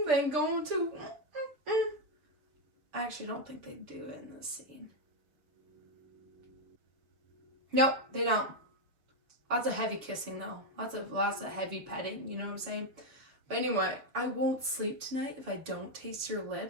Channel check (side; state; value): left; late; 6.6 ms